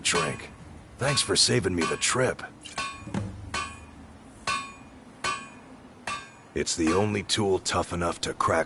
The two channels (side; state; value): both; identical; correlation 1.00